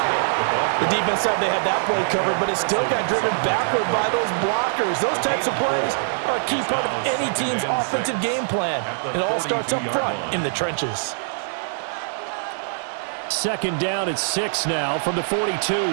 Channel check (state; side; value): silent; left; digital silence